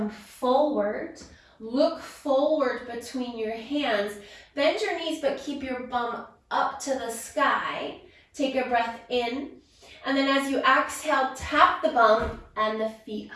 forward. Look forward between your hands. Bend your knees, but keep your bum up to the sky. Take a breath in. And then as you exhale, tap the bum and the feet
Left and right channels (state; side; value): identical; both; correlation 1.00